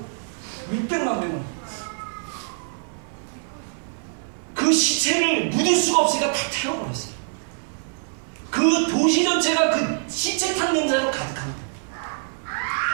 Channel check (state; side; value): silent; left; 62 dB below the other